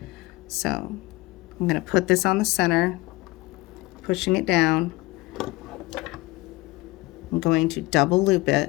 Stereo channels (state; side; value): quieter; right; 21.2 dB